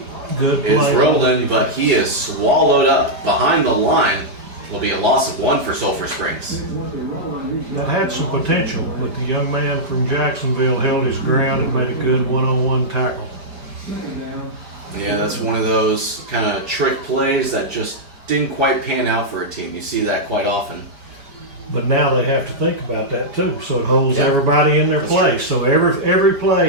Good play. Is rolling, but he is swallowed up behind the line. Will be a loss of 1 for Sulphur Springs. That had some potential, but the young man from Jacksonville held his ground and made a good one-on-one tackle. Yeah, that's one of those kind of trick plays that just didn't quite pan out for a team. You see that quite often. But now they have to think about that too, so it holds everybody in their place. So every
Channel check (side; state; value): left; late; 5.0 ms